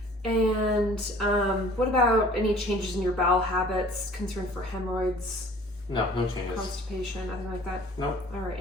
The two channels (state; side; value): normal; both; correlation 0.50